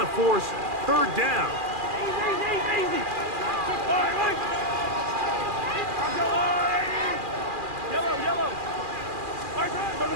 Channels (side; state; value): left; late; 2.4 ms